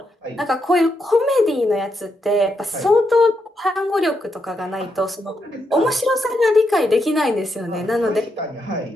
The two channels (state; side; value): normal; both; correlation 0.81